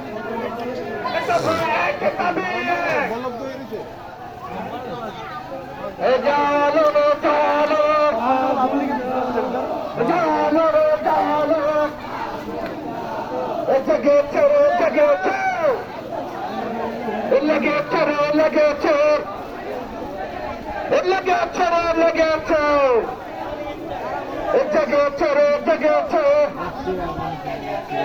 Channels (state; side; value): identical; both; correlation 1.00